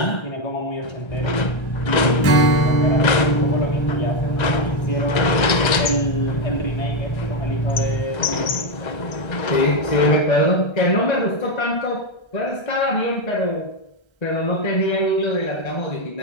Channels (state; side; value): late; right; 1.3 ms